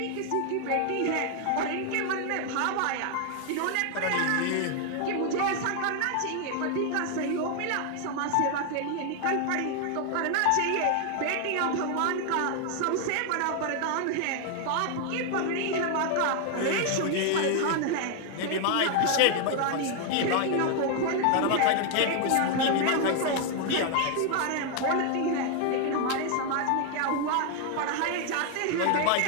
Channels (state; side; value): different; both; correlation 0.00